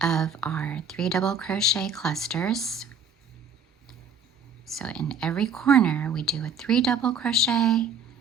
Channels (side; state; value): left; quieter; 4.5 dB